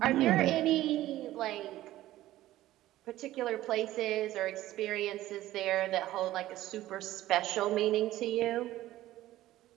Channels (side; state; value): left; quieter; 15.1 dB